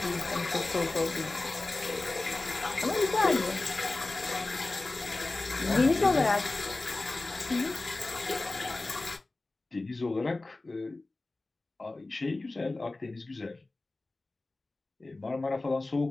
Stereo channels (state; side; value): quieter; right; 3.1 dB